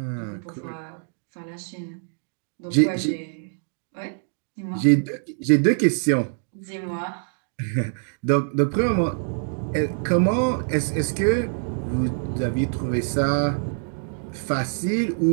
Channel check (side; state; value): left; silent; 62 dB below the other